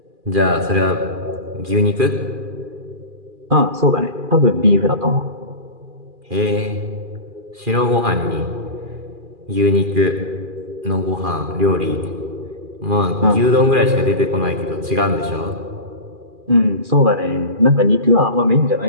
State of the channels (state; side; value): late; left; 2.4 ms